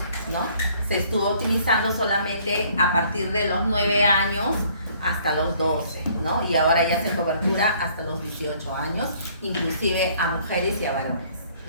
¿no?, se estuvo utilizando solamente a partir de los 9 años hasta los 12, ¿no? Y ahora ya se cobertura hasta los 18 años, inclusive a mujeres y a varones,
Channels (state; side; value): inverted; both; correlation -0.60